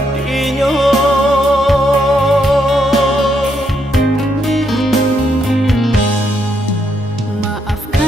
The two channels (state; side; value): normal; both; correlation 0.77